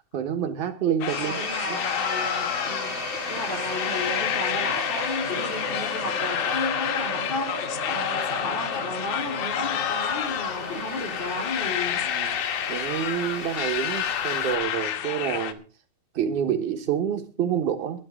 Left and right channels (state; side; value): late; right; 2.7 ms